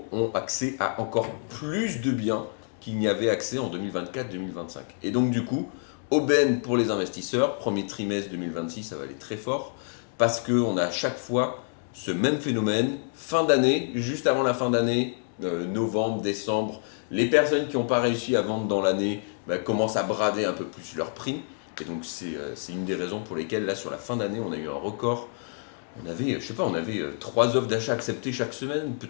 ont accès à encore plus de biens qu'il n'y avait accès en 2024-2025. Et donc du coup, aubaine pour les investisseurs, premier trimestre 2026, ça va aller très fort, parce qu'on a à chaque fois ce même phénomène, fin d'année, juste avant la fin d'année, novembre, décembre, les personnes qui n'ont pas réussi à vendre dans l'année commencent à brader un peu plus leur prix. Et donc c'est une des raisons pour lesquelles là sur la fin d'année on a eu un record. On avait 3 offres d'achat acceptées chaque semaine,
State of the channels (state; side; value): silent; right; 60 dB below the other